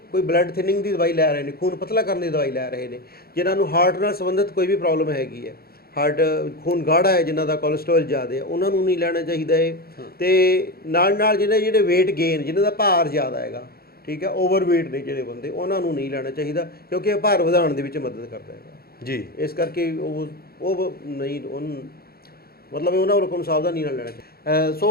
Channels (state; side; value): late; right; 0.44 ms